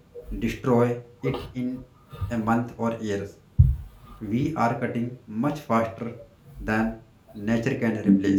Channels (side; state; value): both; identical; correlation 1.00